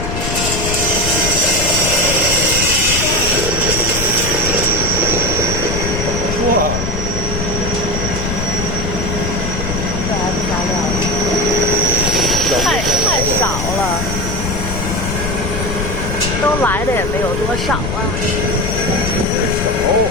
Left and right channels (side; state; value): left; noise; rumble, 3 dB below the sound